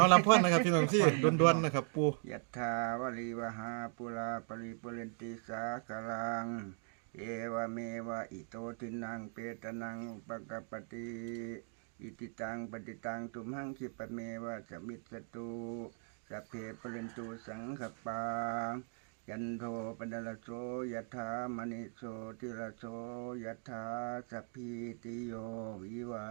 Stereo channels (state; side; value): silent; left; 52 dB below the other